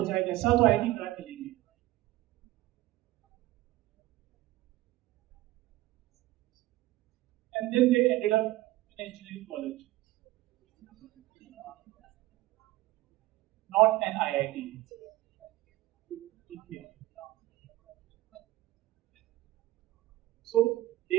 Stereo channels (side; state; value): left; quieter; 17.2 dB